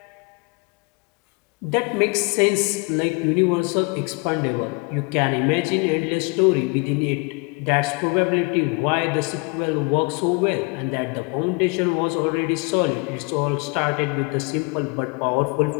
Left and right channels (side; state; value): right; quieter; 30.7 dB